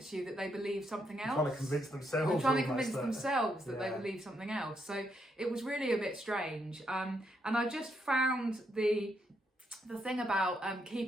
you that they believe something else. Trying to convince themselves. They're trying to convince themselves that they believe something else. So it was really a bit strange. And I just found the thing about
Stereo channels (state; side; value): normal; both; correlation 0.77